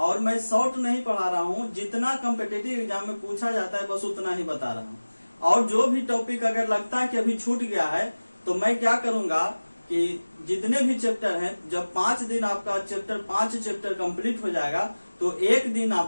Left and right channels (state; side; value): inverted; both; correlation -1.00